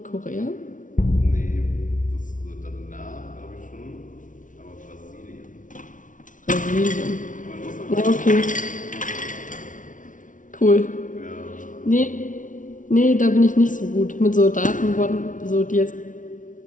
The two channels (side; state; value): right; late; 0.38 ms